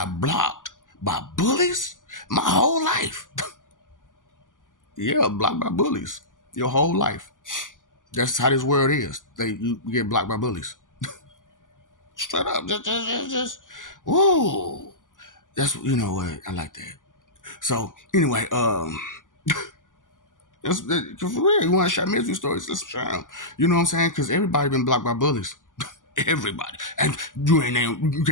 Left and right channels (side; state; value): right; late; 0.88 ms